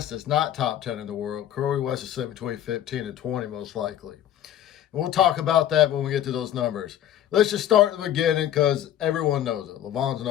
is not top 10 in the world. Corey West is sitting between 15 and 20, most likely. And we'll talk about that when we get to those numbers. Let's just start at the beginning, because everyone knows it. Levon's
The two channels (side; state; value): right; quieter; 11.3 dB